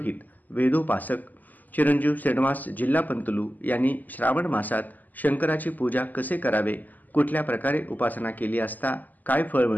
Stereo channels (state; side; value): late; right; 0.083 ms